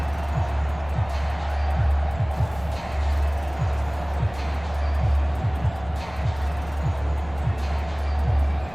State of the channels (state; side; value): noise; right; rumble, 18 dB below the sound